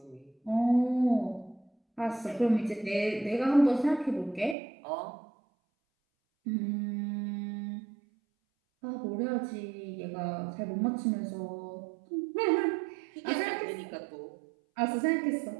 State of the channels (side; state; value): left; drops out; at 4.5 s